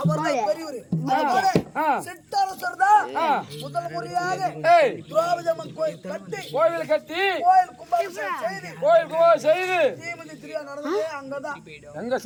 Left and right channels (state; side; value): identical; both; correlation 1.00